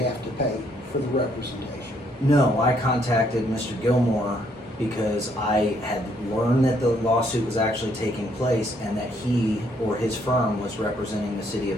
to pay for the representation? No, I contacted Mr. Gilmore because I had learned that the lawsuit was actually taking place and that he or his firm was representing the city of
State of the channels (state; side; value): normal; both; correlation 0.69